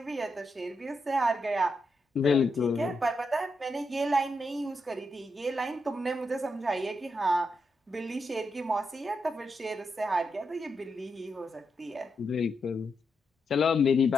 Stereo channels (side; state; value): both; normal; correlation 0.84